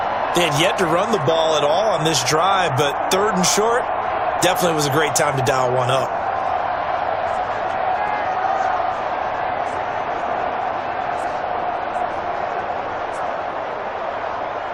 They had yet to run the ball at all on this drive, but 3rd and short definitely was a great time to dial one up.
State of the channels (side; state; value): both; identical; correlation 1.00